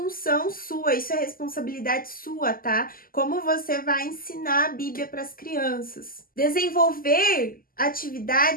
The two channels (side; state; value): right; late; 0.42 ms